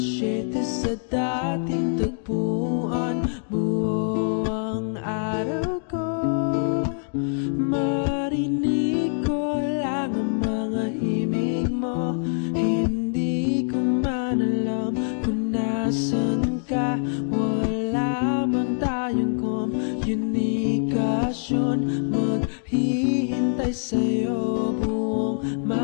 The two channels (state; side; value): silent; right; 62 dB below the other